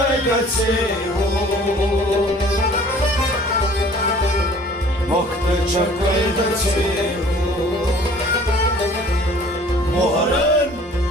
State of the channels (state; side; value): normal; both; correlation 0.51